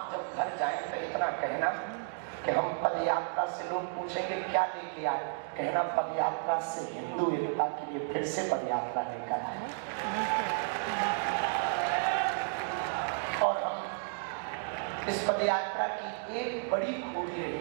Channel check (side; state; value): left; silent; digital silence